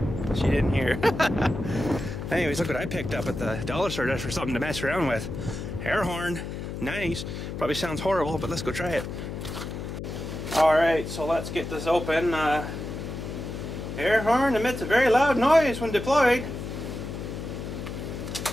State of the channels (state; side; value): noise; left; hum, 7 dB below the sound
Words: She didn't hear. Anyways, look what I picked up at the dollar store just for something to mess around with. Air horn. Nice. Probably sounds horrible, but let's go try it. Alright, so let's get this open. Air horn emits a very loud noise when deployed.